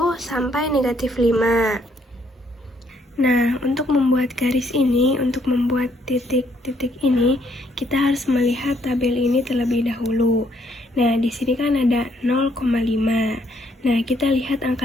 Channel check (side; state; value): both; normal; correlation 0.69